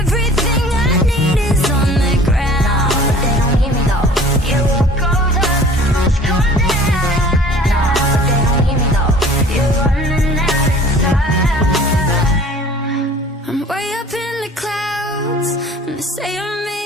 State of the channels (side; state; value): both; normal; correlation 0.48